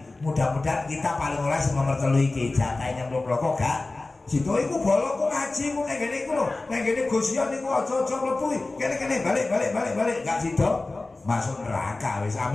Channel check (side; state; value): right; quieter; 3.2 dB